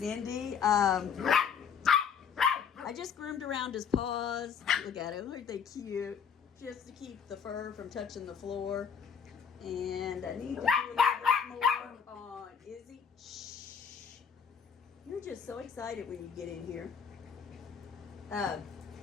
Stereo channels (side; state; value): right; quieter; 7.0 dB